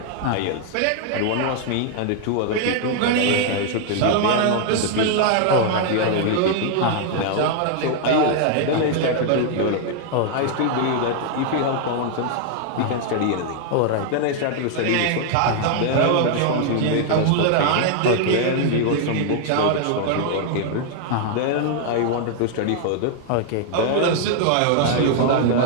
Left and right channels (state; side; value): different; both; correlation 0.00